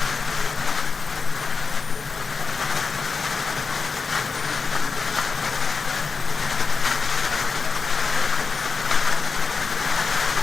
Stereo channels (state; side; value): quieter; right; 4.7 dB